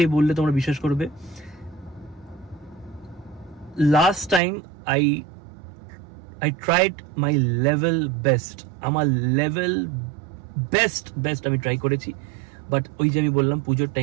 বললে তোমরা বিশ্বাস করবে, last time I tried my level best, আমার লেভেল বেস্ট আমি ট্রাই করেছি, বাট ওই যে আমি বললাম পুজোর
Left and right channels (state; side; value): drops out; left; at 4.4 s